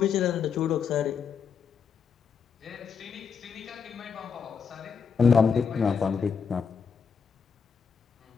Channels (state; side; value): quieter; right; 6.2 dB